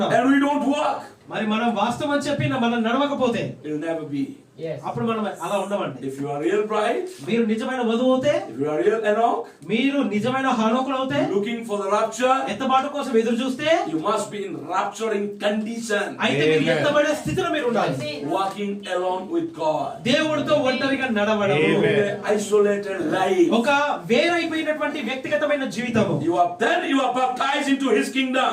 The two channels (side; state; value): both; identical; correlation 1.00